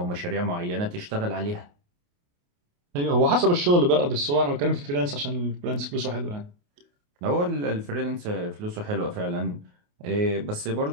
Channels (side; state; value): left; late; 28 ms